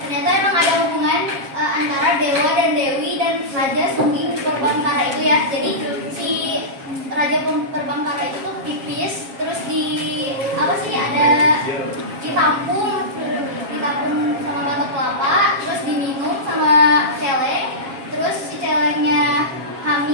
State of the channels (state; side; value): late; left; 7.4 ms